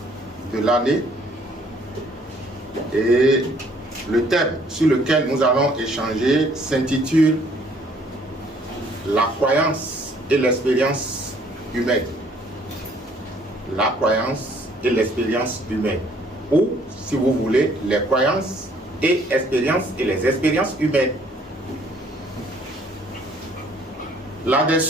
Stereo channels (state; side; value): normal; both; correlation 0.61